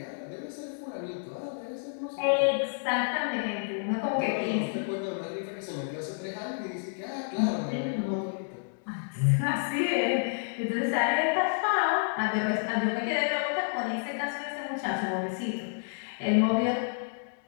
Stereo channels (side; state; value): right; silent; digital silence